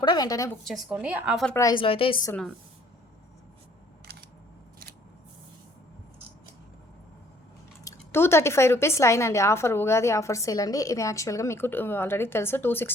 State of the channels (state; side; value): normal; both; correlation 0.60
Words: కూడా వెంటనే బుక్ చేసుకోండి. ఆఫర్ ప్రైస్లో అయితే ఇస్తున్నాను. ₹235 లైన్ అండి. ఆఫర్ ఉగాది ఆఫర్ సేల్ అండి. ఇది యాక్చువల్గా మీకు ఆల్రెడీ తెలుసు